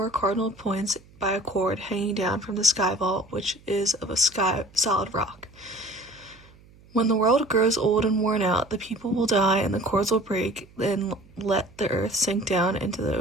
cardinal points by a cord hanging down from the sky vault, which is of a solid rock. When the world grows old and worn out, the people will die and the cords will break and let the earth sink down into the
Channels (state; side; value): noise; right; hum, 26 dB below the sound